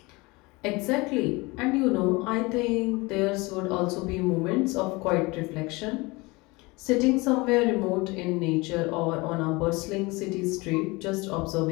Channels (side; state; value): right; quieter; 24.4 dB